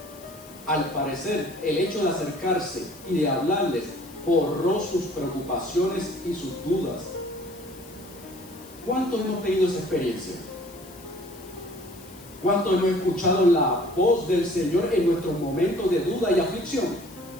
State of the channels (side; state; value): left; noise; hiss, 21 dB below the sound